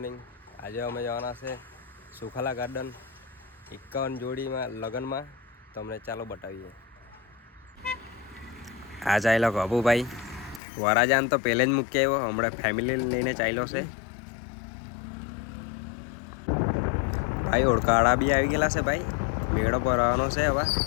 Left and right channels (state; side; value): drops out; right; at 10.6 s